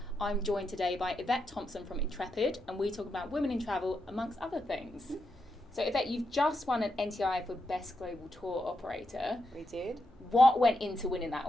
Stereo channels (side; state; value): both; normal; correlation 0.84